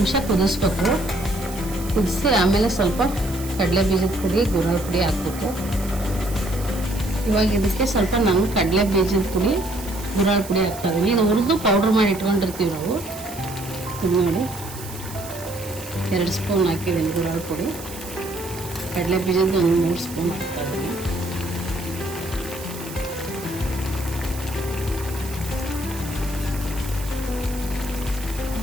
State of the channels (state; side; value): noise; right; hiss, 14 dB below the sound